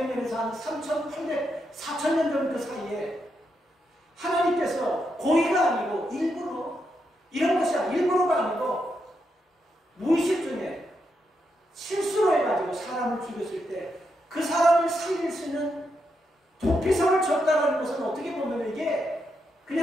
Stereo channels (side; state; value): both; normal; correlation 0.82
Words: 한 3,800, 4,000년 정도 사이에 하나님께서 고의가 아니고 일부러, 이런 것이 일부러가 아니고 무의식 중에 실수로 해가지고 가지고 사람을 죽였을 때 그 사람을 살릴 수 있는 도피성을 줬다는 것은 어떻게 보면 이게